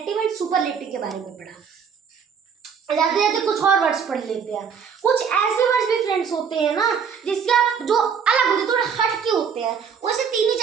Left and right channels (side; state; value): left; quieter; 6.7 dB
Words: एंड सुपरलेटिव के बारे में पढ़ा। जाते जाते कुछ और वर्ड्स पढ़ लेते हैं। कुछ ऐसे वर्ड्स भी फ्रेंड्स होते हैं ना जिसके आप जो अलग होते हैं, थोड़े हट के होते हैं, वैसे 3 ही